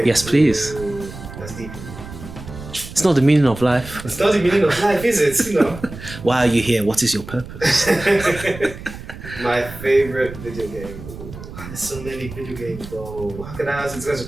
Yes, please. Ooh, that's deep. It's not the meaning of life. It's not the meaning of life, is it? You know. Why are you here? What is your purpose? My favorite video game. Ooh, there's so many video games, bro. How can I answer this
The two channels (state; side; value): noise; right; rumble, 13 dB below the sound